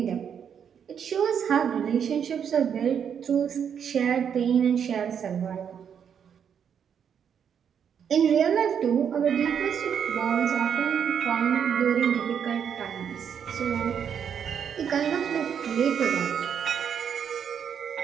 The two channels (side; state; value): left; quieter; 7.9 dB